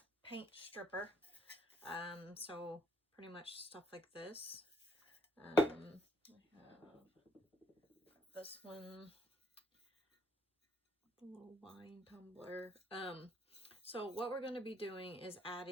paint stripper. So pretty much stuff like this. I have this one, the little wine tumbler. So what we're going to be doing is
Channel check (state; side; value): normal; both; correlation 0.69